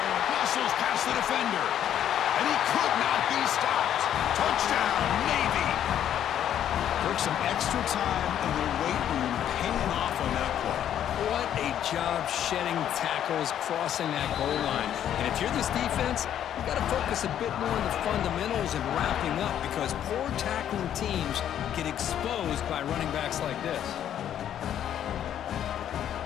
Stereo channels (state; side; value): quieter; right; 10.3 dB